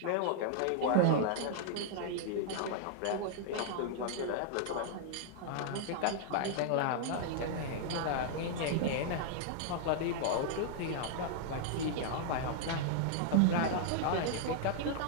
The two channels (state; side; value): different; both; correlation -0.01